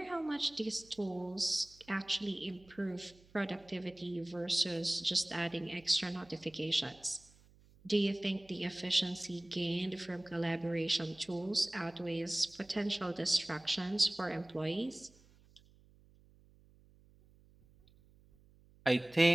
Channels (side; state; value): right; noise; hum, 27 dB below the sound